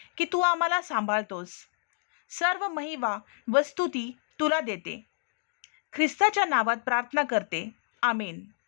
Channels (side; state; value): right; silent; 58 dB below the other